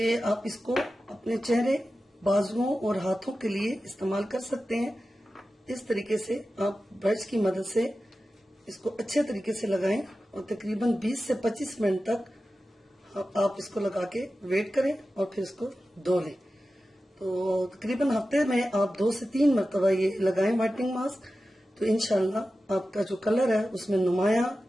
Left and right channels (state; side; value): normal; both; correlation 0.93